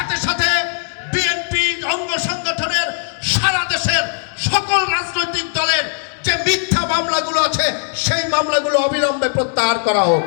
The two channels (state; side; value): silent; right; digital silence